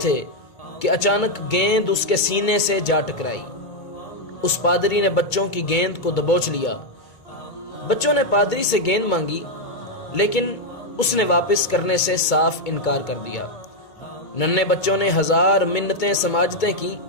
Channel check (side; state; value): right; late; 2.2 ms